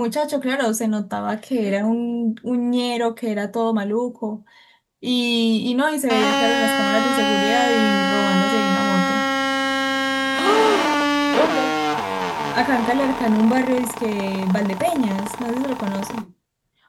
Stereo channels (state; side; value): identical; both; correlation 1.00